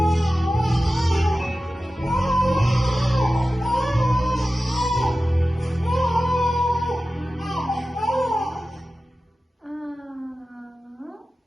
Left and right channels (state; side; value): normal; both; correlation 0.94